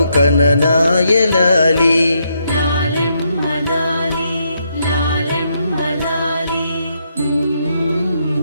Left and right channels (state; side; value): inverted; both; correlation -0.77